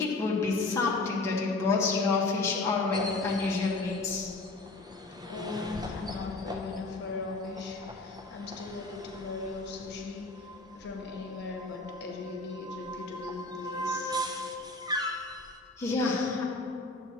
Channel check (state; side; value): quieter; right; 3.2 dB